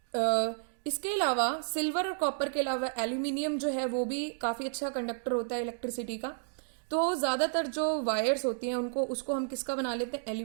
इसके अलावा सिल्वर और कॉपर के अलावा एल्यूमिनियम जो है वो भी काफी अच्छा कंडक्टर होता है इलेक्ट्रिसिटी का। तो ज्यादातर जो वायर्स होती हैं उसको हम किसका बना लेते हैं,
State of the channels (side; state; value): left; silent; digital silence